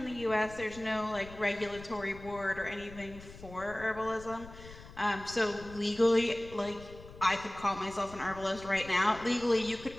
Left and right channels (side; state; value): left; noise; rumble, 17 dB below the sound